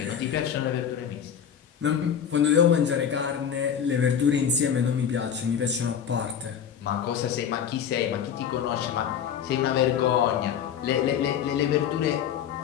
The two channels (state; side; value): quieter; right; 8.4 dB